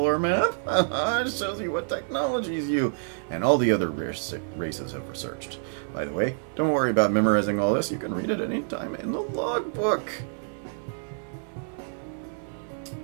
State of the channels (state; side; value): silent; left; digital silence